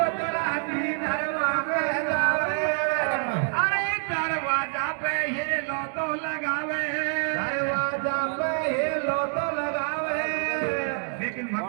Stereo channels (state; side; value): silent; left; 56 dB below the other